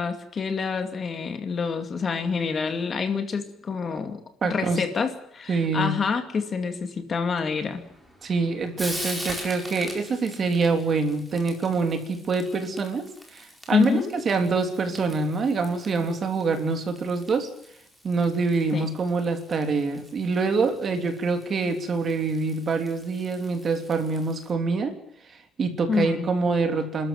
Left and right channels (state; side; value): normal; both; correlation 0.72